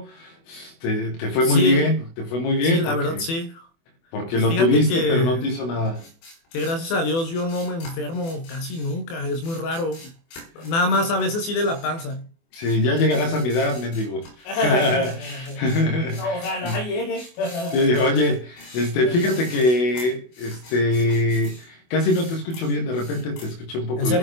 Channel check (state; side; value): late; right; 24 ms